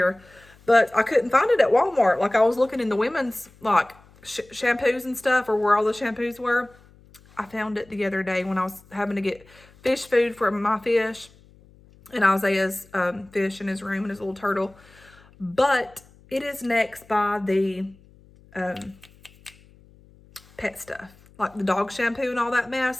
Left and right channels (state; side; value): noise; left; hum, 27 dB below the sound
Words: But I couldn't find it at Walmart. Like, I was looking in the women's, like, shampoos and stuff, or where all the shampoos were. I found it the other day when I was having to get fish food for my fish and Isaiah's fish in his room and his little turtle. But it is next by the pet stuff. Like the dog shampoo and all that